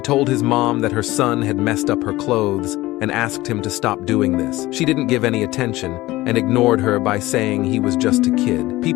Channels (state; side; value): quieter; right; 18.3 dB